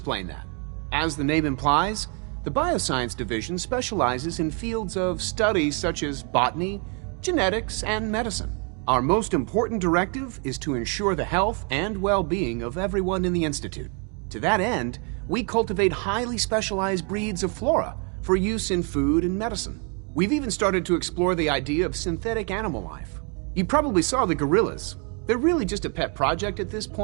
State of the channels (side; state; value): left; quieter; 37.6 dB